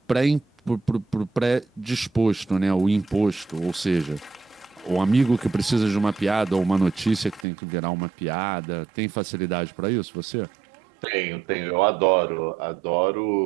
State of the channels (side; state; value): left; drops out; at 7.5 s